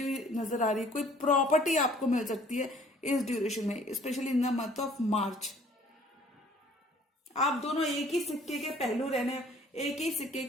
हुई नजर आ रही है, कोई प्रॉपर्टी आपको मिल सकती है इस ड्यूरेशन में, specially in the month of मार्च। आप दोनों एक ही सिक्के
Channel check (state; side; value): normal; both; correlation 0.56